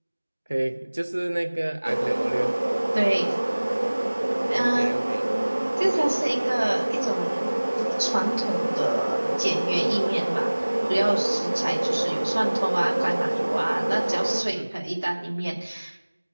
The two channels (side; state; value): both; inverted; correlation -1.00